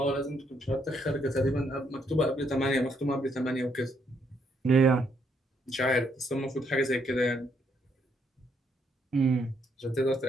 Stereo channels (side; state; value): both; normal; correlation 0.73